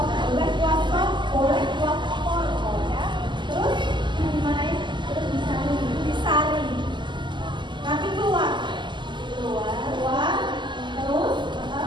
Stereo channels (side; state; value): left; late; 0.22 ms